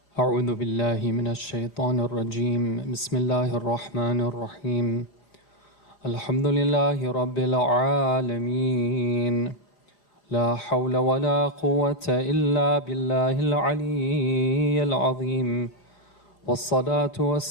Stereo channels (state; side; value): late; right; 4.9 ms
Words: أعوذ بالله من الشيطان الرجيم بسم الله الرحمن الرحيم الحمد لله رب العالمين لا حول ولا قوة إلا بالله العلي العظيم والصلاة